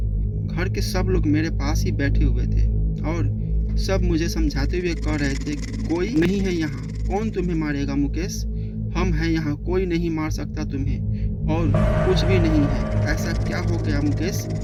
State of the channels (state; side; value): identical; both; correlation 1.00